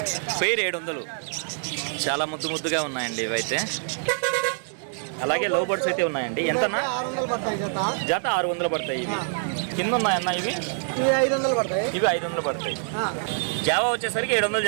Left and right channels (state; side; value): silent; left; digital silence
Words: పేరు 700. చాలా ముద్దుగా ఉన్నాయండి ఇవైతే. అలాగే లవ్ బర్డ్స్ అయితే ఉన్నాయండి. ఎంతన్నా? 600 పడతాయి జత. జత 600 పడతాయి. ఇవి కింద ఉన్నాయన్న ఇవి? ఇవి 500 పడతాయి. ఇవి 500 పడతాయి. జావా వచ్చేసరికి 700